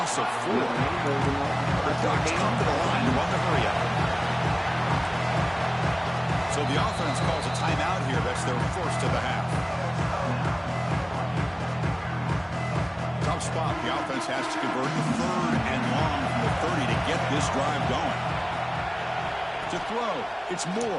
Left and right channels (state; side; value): identical; both; correlation 1.00